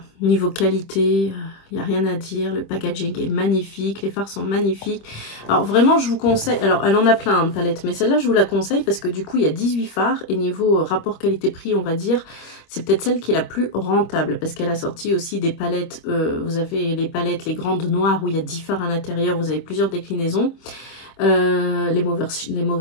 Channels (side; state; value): right; late; 26 ms